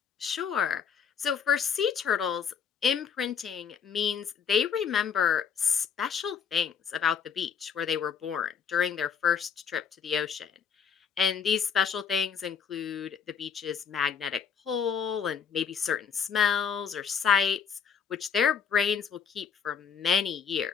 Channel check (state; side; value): quieter; right; 7.1 dB